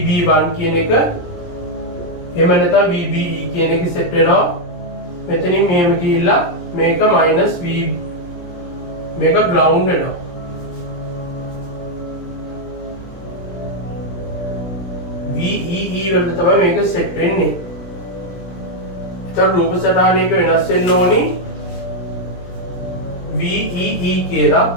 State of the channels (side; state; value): right; late; 17 ms